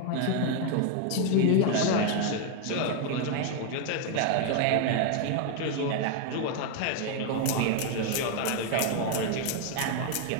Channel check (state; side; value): different; both; correlation 0.00